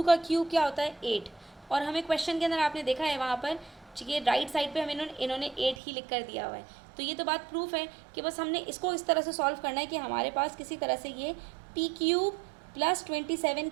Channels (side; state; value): left; drops out; at 5.8 s